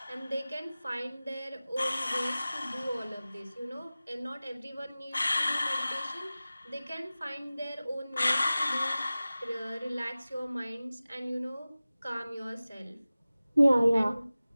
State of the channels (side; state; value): both; inverted; correlation -0.97